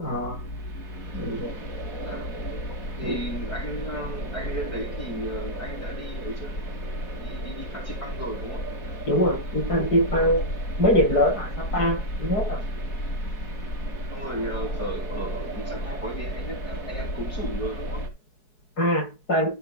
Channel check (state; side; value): late; right; 4.7 ms